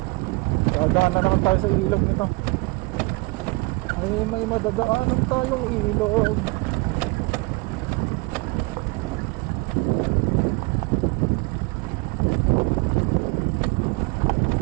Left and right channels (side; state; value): left; quieter; 25.9 dB